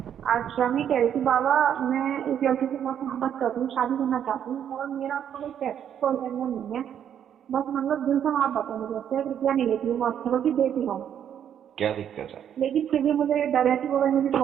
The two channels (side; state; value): left; quieter; 9.3 dB